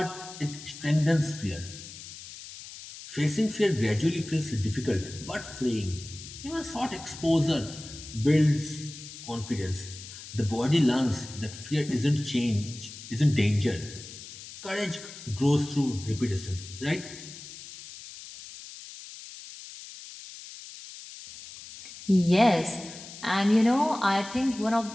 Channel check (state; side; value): noise; left; hiss, 14 dB below the sound